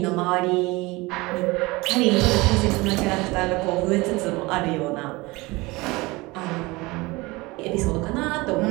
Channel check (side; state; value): left; quieter; 22.8 dB